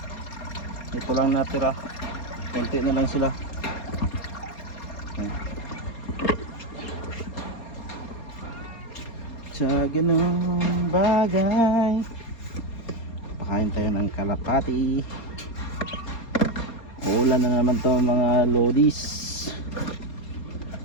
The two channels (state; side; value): late; right; 4.3 ms